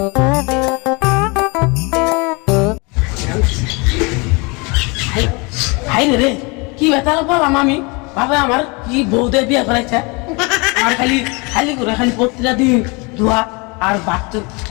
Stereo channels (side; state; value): right; quieter; 28.9 dB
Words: হাই রে কি বেতাল বললাম আমি বাবা আমার কি বউদের বিয়ে করাইছে আর খালি খালি করে খালি প্রতিটা দিন ধোয়া আর